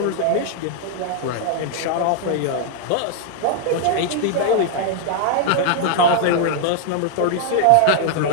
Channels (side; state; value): both; different; correlation -0.01